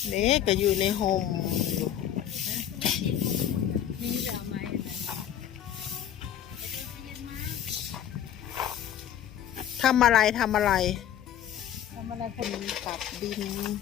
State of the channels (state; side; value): quieter; right; 10.5 dB